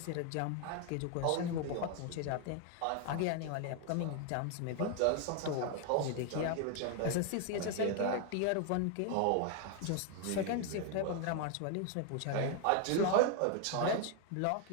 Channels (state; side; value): different; both; correlation 0.00